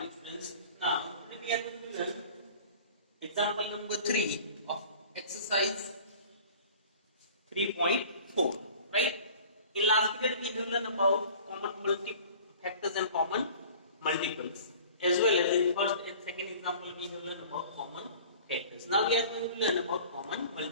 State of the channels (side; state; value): both; inverted; correlation -0.45